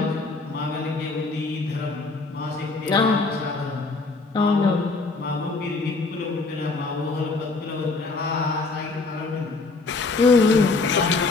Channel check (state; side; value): quieter; right; 3.8 dB